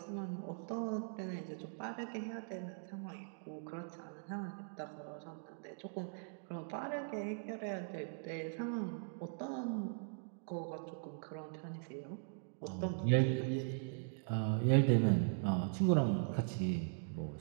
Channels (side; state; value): left; silent; digital silence